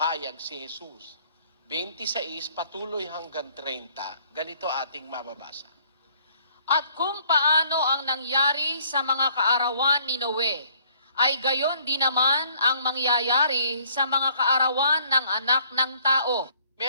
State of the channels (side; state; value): both; inverted; correlation -0.62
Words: si Jesus. 26 patuloy hanggang 30, ganito ating mababasa. At kung paano ang nangyari sa mga kaarawan ni Noe, ay gayon din naman ang mangyayari sa mga kaarawan ng anak ng tao.